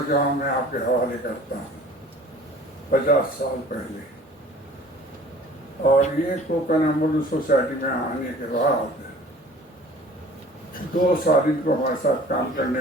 میں آپ کے حوالے کرتا ہوں 50 سال پہلے۔ اور یہ کوکن ایمبولینس سوسائٹی میں آنے کے بعد 2 سال ان کو ہمارے ساتھ کام کرنے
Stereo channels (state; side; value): normal; both; correlation 0.48